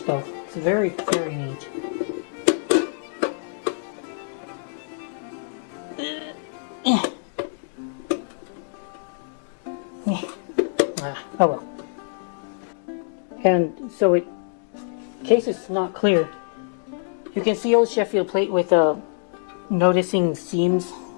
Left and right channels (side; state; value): right; silent; digital silence